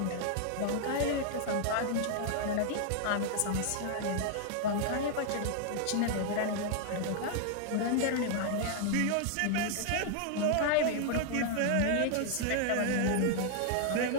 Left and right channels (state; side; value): different; both; correlation 0.00